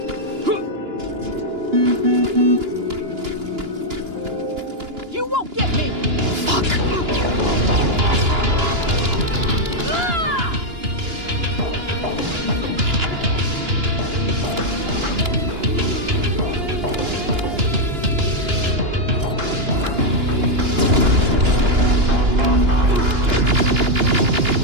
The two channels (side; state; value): left; late; 2.9 ms